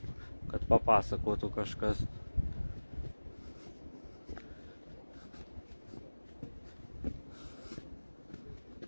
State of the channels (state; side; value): inverted; both; correlation -1.00